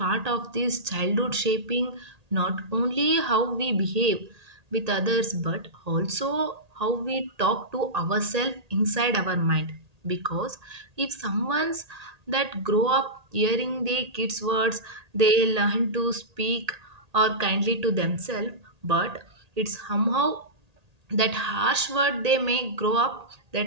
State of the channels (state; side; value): late; left; 1.8 ms